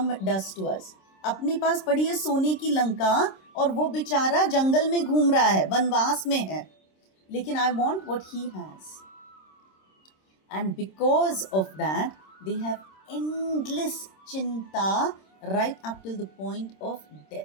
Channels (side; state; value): right; late; 26 ms